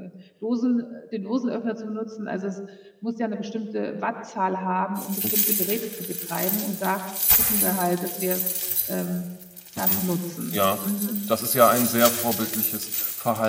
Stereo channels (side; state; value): both; identical; correlation 1.00